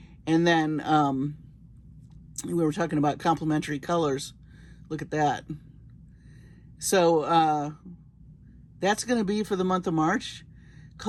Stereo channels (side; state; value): both; identical; correlation 1.00